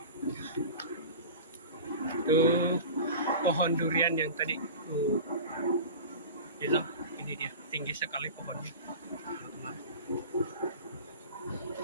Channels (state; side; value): inverted; both; correlation -0.34